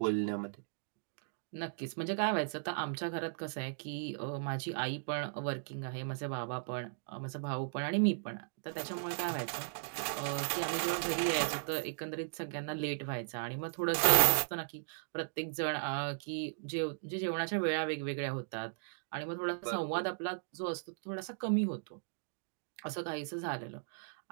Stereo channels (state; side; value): silent; left; digital silence